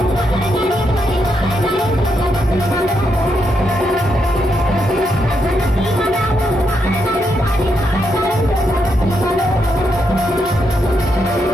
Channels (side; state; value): both; normal; correlation 0.80